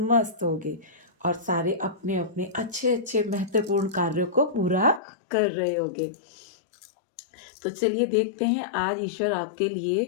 मस्त होंगे और सारे अपने-अपने अच्छे-अच्छे महत्वपूर्ण कार्यों को पूरा कर रहे होंगे। तो चलिए देखते हैं आज ईश्वर आपके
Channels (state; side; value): drops out; right; at 5.0 s